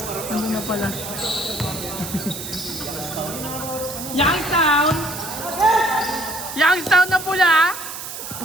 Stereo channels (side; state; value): right; noise; hiss, 8 dB below the sound